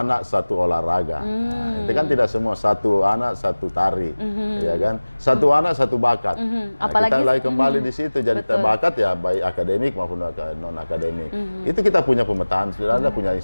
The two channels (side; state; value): both; inverted; correlation -1.00